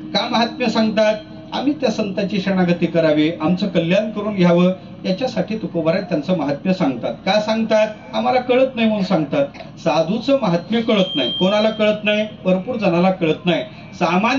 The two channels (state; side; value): identical; both; correlation 1.00